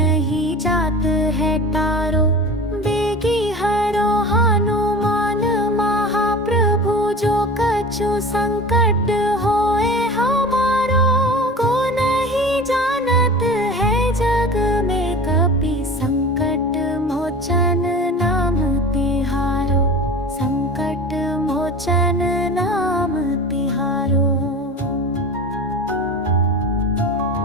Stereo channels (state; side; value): normal; both; correlation 0.35